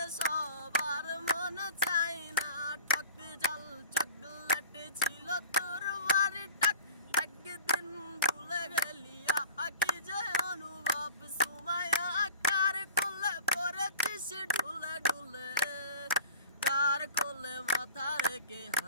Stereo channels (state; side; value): inverted; both; correlation -0.42